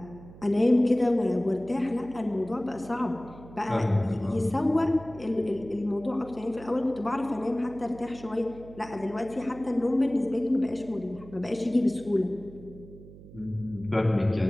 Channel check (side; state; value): right; noise; hum, 18 dB below the sound